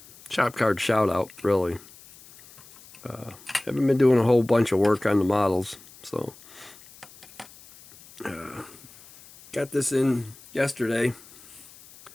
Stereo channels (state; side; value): noise; left; hiss, 22 dB below the sound